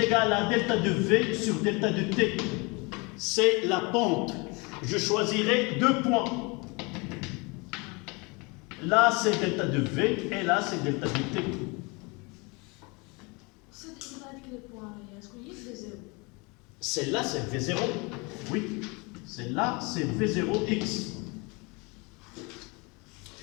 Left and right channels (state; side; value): quieter; right; 28.3 dB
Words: à delta de V sur delta de T. C'est la pente. Je choisirai 2 points. Là, c'est delta de V et là, c'est delta de T. Celle-là, c'est V0. Oui. Celle-là, c'est V0X.